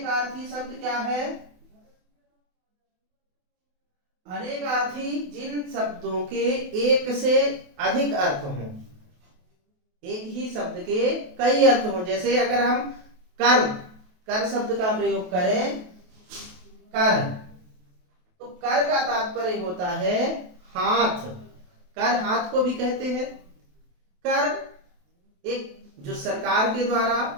शब्द क्या है, अनेकार्थी जिन शब्दों के एक से अधिक अर्थ हों, एक ही शब्द के कई अर्थ हों। जैसे अगर हम कर शब्द का प्रयोग करें, कर, तो कर का तात्पर्य होता है हाथ। कर हाथ को भी कहते हैं। कर एक जो सरकार के द्वारा,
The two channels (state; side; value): late; left; 28 ms